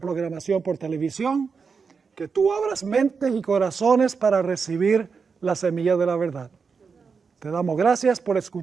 por televisión, que tú abras mentes y corazones para recibir la semilla de la verdad. Te damos gracias por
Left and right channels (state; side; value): quieter; left; 5.4 dB